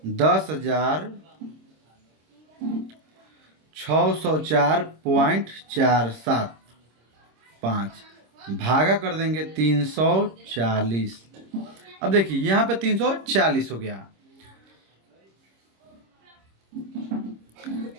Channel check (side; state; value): left; late; 26 ms